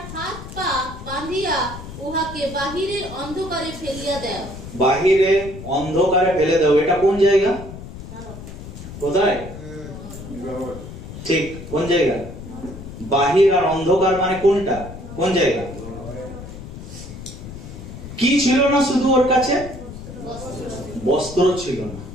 হাত পা বাঁধিয়া উহাকে বাহিরের অন্ধকারে ফেলিয়া দাও। বাহিরে অন্ধকারে ফেলে দাও। এটা কোন জায়গা? কোথায়? ঠিক, কোন জায়গা? বাহির আর অন্ধকার মানে কোনটা, কোন জায়গা? কি ছিল না শুধু ওর কাছে? বস্ত্র ছিল না।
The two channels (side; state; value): left; noise; rumble, 12 dB below the sound